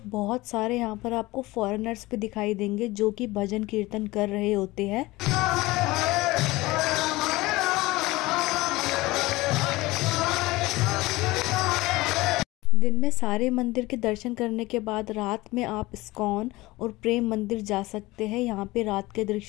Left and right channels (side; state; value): right; quieter; 20.2 dB